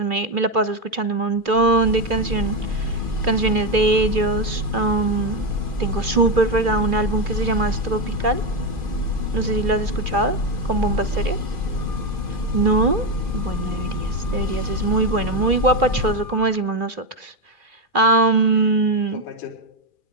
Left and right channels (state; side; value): late; left; 2.4 ms